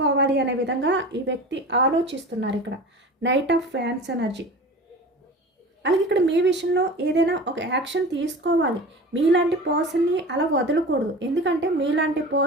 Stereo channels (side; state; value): both; normal; correlation 0.35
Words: అనే విధంగా ఈ వ్యక్తి ఆలోచిస్తున్నారు. ఇక్కడ నైట్ ఆఫ్ ఫ్యాన్స్ ఎనర్జీ. అలాగే ఇక్కడ మీ విషయంలో ఏదైనా ఒక యాక్షన్ తీసుకోవాలి. మీలాంటి పర్సన్ని అలా వదలకూడదు. ఎందుకంటే మీలాంటి